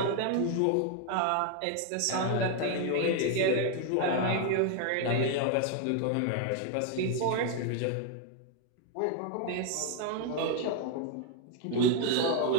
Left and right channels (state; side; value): different; both; correlation 0.00